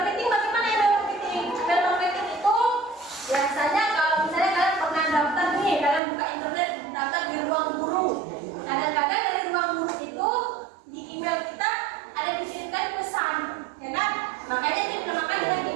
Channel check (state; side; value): drops out; left; at 6.0 s